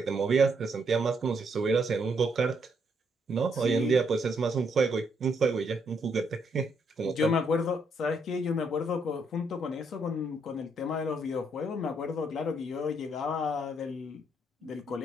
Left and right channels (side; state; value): both; normal; correlation 0.74